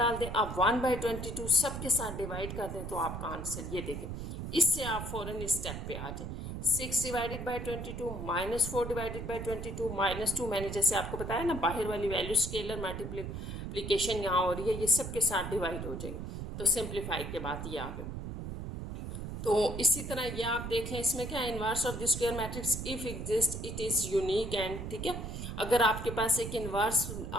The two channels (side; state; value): right; noise; rumble, 6 dB below the sound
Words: दें। अब 1/22 सबके साथ डिवाइड कर दें तो आपका आंसर ये देखें। इससे आप फ़ौरन इस स्टेप पे आ जाए। 6 डिवाइडेड बाई 22 -4 डिवाइडेड बाई 22 -2, मैंने जैसे आपको बताया ना, बाहर वाली वैल्यू स्केलर मल्टीप्लिकेशन यहाँ हो रही है, ये सबके साथ डिवाइड हो जाएगी। तो सिंप्लीफाई के बाद ये आ गए। तो इसी तरह ये आप देख लें, इसमें क्या है, inverse of the square matrix if exist it is unique and, ठीक है। अगर आपके पास एक इनवर्स